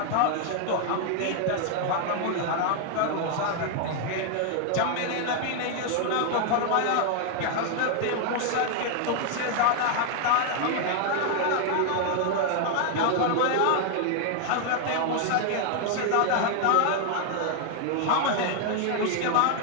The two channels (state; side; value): different; both; correlation 0.00